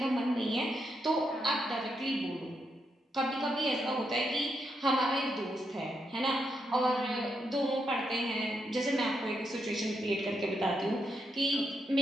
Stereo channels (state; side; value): normal; both; correlation 0.82